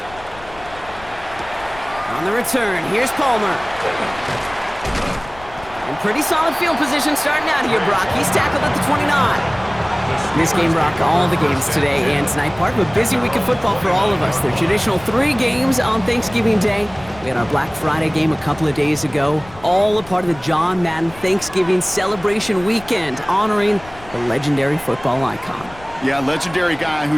On the return, here's Palmer. And pretty solid field position starting out here, Brock. He's tackled at the 29. This game, Brock, all the games today and tonight, part of a busy week of football for all of us. The traditional 3 games on Thanksgiving Day. We had our Black Friday game a couple of days ago, all a part of the John Madden Thanksgiving celebration weekend, honoring the legendary football icon. Yeah, legendary guy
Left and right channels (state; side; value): noise; left; rumble, 20 dB below the sound